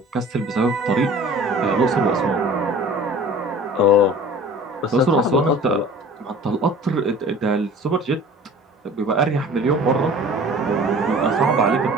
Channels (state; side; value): normal; both; correlation 0.44